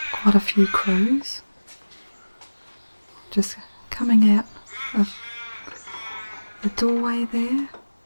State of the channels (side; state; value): both; inverted; correlation -1.00